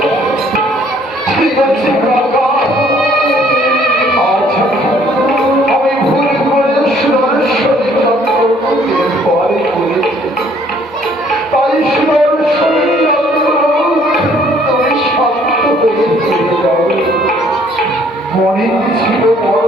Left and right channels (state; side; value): normal; both; correlation 0.61